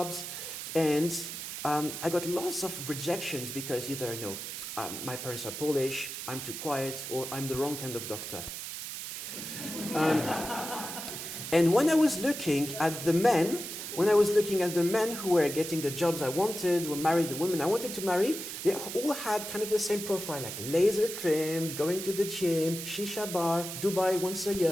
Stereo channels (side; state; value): right; noise; hiss, 7 dB below the sound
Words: and I got lots of rejections because either, you know, my parents are Polish, I'm too quiet, or I'm the wrong kind of doctor. And when I was looking at the men, who were getting the jobs I wanted, who married the women I wanted to marry, they all had kind of the same profile, like laser trimmed, going to the gym, shisha bar, Dubai once a